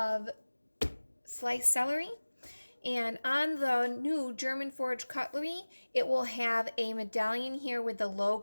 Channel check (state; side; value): inverted; both; correlation -1.00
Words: sliced celery. And on the new German forged cutlery, it will have a medallion here with the